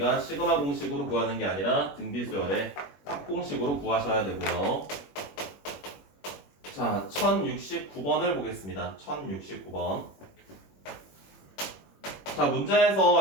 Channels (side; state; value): right; late; 21 ms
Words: 시그마 공식으로 구하는 게 아니라 등비수열의 합공식으로 구하셔야 되고요. 자, 1069번을 보겠습니다. 1069번. 자,